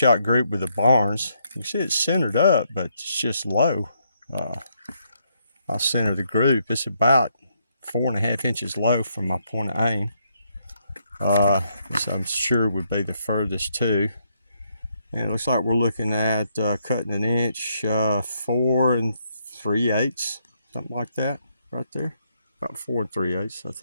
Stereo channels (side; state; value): both; inverted; correlation -0.75